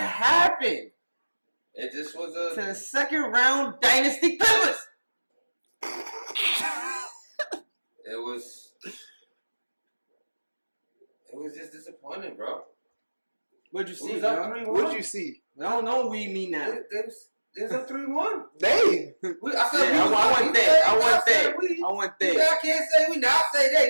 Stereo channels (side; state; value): both; inverted; correlation -1.00